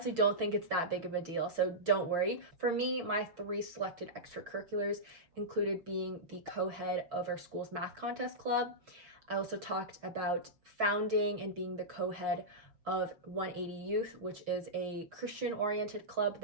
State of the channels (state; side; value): late; left; 6.2 ms